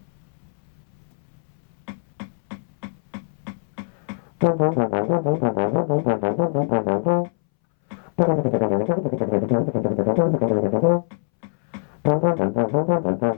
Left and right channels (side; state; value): right; silent; 62 dB below the other